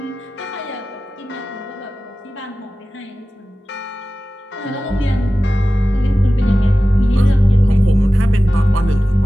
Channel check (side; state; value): both; normal; correlation 0.95